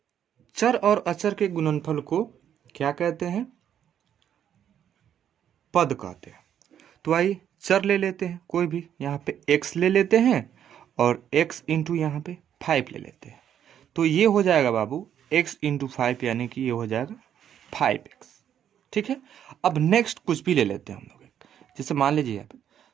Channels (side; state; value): left; quieter; 9.6 dB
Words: चर और अचर के गुणनफल को क्या कहते हैं? पद कहते हैं। तो आइए चर ले लेते हैं, कोई भी यहाँ पे x ले लेते हैं और x इंटू यहाँ पे 5 ले लेते हैं। तो ये हो जाएगा बाबू x इंटू 5, यानी कि ये हो जाएगा 5x। ठीक है, अब नेक्स्ट कुछ भी ले लेते हैं हम लोग, जैसे मान लीजिए यहाँ पे